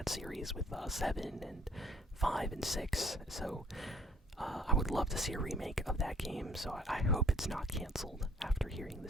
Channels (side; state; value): both; normal; correlation 0.59